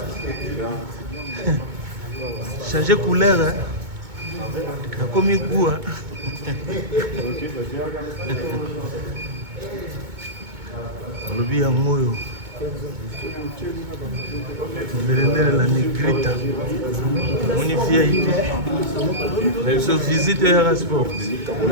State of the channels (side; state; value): left; late; 2.2 ms